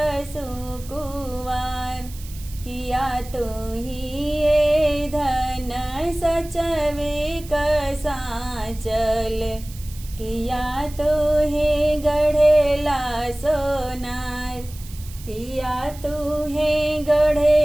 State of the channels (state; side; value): noise; right; hiss, 18 dB below the sound